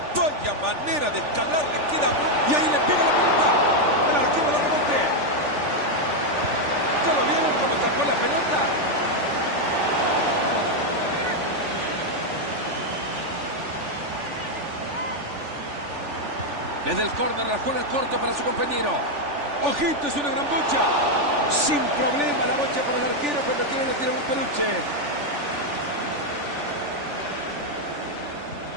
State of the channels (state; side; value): late; left; 3.4 ms